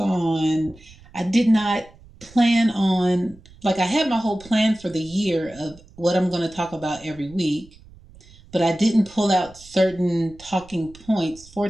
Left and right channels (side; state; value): right; noise; rumble, 23 dB below the sound